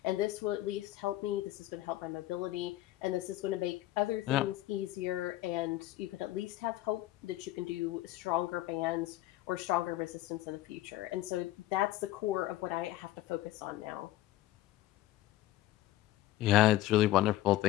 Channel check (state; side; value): quieter; right; 15.3 dB